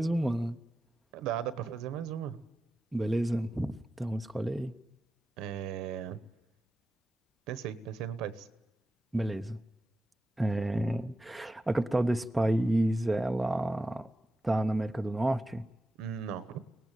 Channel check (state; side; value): normal; both; correlation 0.91